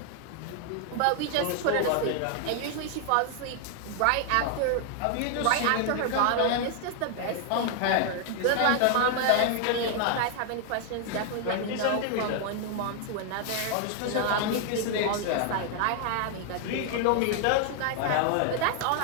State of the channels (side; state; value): both; different; correlation 0.00